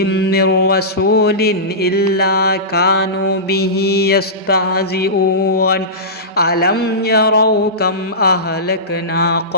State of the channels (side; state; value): both; normal; correlation -0.19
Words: من رسول إلا كانوا به يستهزئون ألم يروا كم أهلكنا